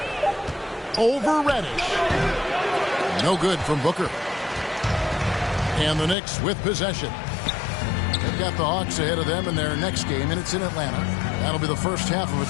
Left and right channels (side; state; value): right; drops out; at 6.2 s